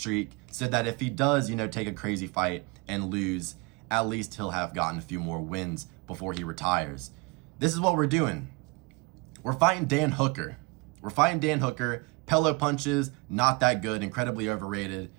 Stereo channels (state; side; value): quieter; left; 27.5 dB